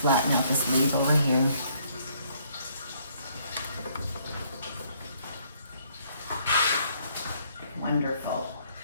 out this leaf over here. Wonderful.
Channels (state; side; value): inverted; both; correlation -0.67